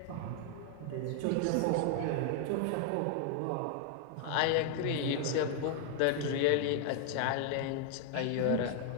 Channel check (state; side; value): different; both; correlation 0.00